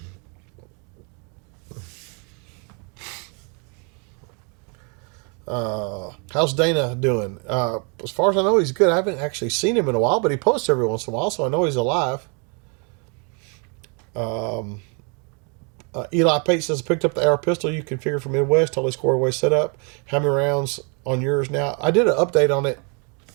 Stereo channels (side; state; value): left; quieter; 35.6 dB